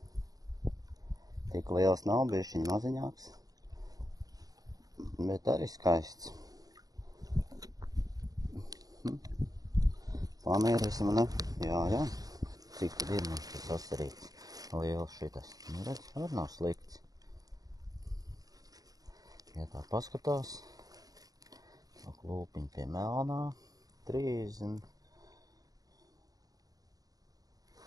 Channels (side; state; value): left; late; 0.18 ms